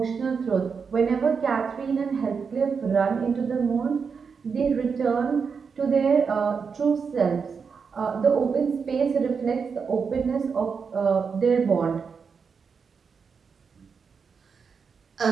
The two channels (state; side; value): quieter; left; 5.8 dB